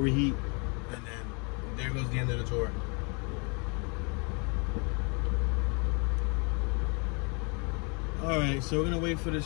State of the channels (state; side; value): quieter; right; 33.8 dB